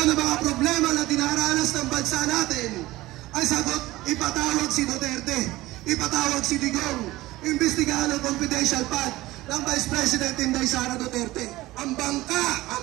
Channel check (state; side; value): quieter; left; 18.0 dB